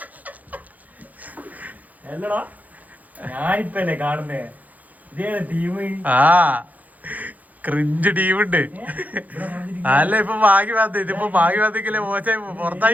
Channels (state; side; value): late; left; 0.079 ms